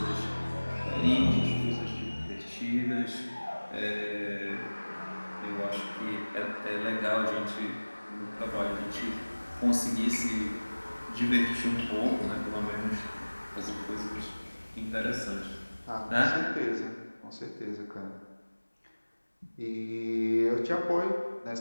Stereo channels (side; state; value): both; inverted; correlation -1.00